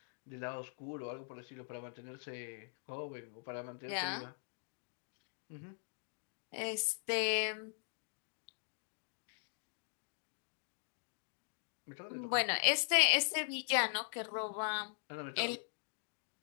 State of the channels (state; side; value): silent; right; digital silence